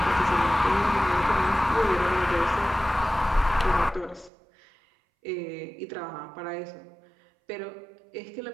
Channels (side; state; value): left; drops out; at 4.3 s